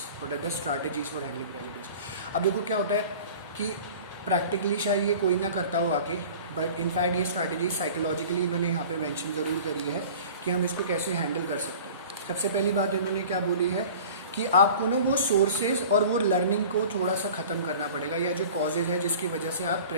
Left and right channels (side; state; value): both; inverted; correlation -0.42